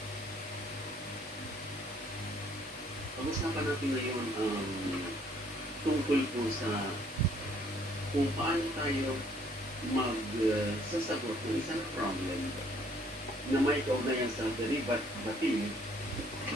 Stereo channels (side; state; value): both; normal; correlation 0.63